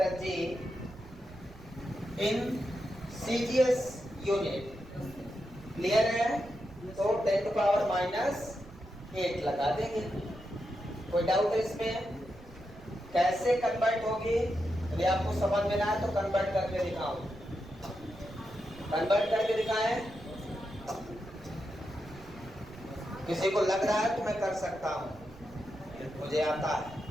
G in CGS unit? Clear है? तो 10⁻⁸ लगा देंगे। कोई डाउट है इसमें? कैसे कन्वर्ट होगी यदि आपको समझ में ना आए तो कन्वर्ट करके दिखाओ। कन्वर्ट करके दिखाएं। किसी को लग रहा है तो मैं कर सकता हूं, मुझे आता है।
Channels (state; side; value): noise; right; rumble, 21 dB below the sound